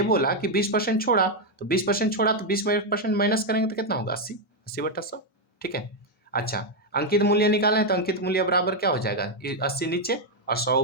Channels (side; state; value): both; normal; correlation 0.02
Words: बोला कि 20% छोड़ा, तो 20% छोड़ा तो 20% माइनस करेंगे तो कितना होगा? 80, 80 बटा 100। ठीक है, अच्छा, अंकित मूल्य निकालना है तो अंकित मूल्य बराबर क्या हो जाएगा? 80 नीचे और 100